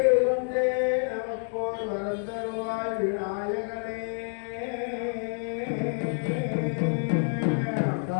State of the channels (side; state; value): right; silent; 56 dB below the other